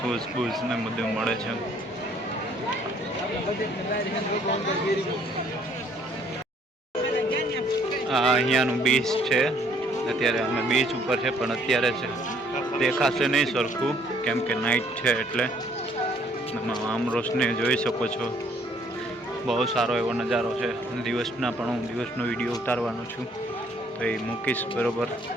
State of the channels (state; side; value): normal; both; correlation 0.63